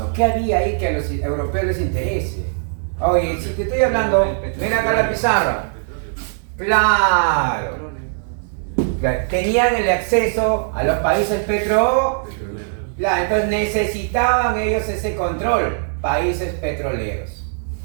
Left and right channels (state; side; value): silent; left; digital silence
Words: ¿Qué había ahí que a los europeos les interese? Oye, si te estoy hablando, mira acá la pizarra. Claro. Tenían el acceso a los países petroleros. Claro, entonces necesitaban ellos ese control. Países petroleros.